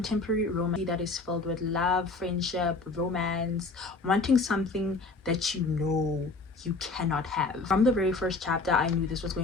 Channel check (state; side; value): quieter; right; 3.6 dB